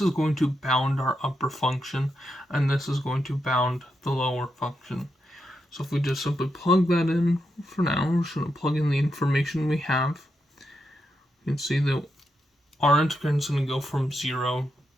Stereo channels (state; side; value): normal; both; correlation 0.84